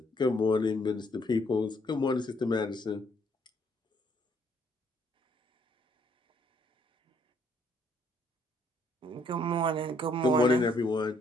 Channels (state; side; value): normal; both; correlation 0.67